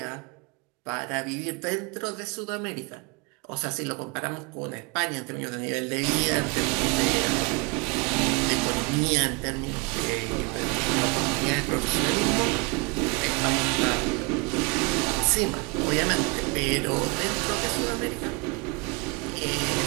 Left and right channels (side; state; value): left; quieter; 29.5 dB